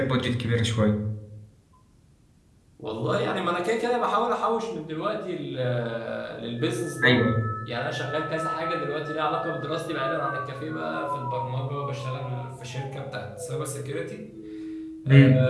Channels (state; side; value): identical; both; correlation 1.00